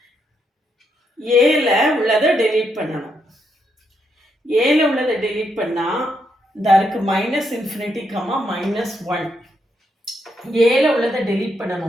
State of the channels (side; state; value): both; normal; correlation 0.78